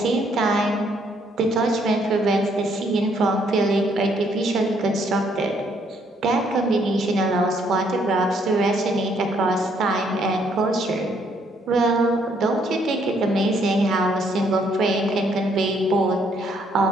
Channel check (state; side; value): normal; both; correlation 0.69